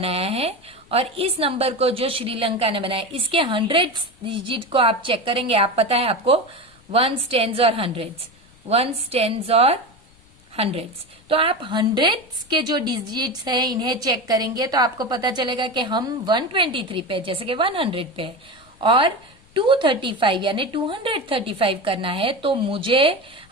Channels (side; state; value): left; noise; rumble, 29 dB below the sound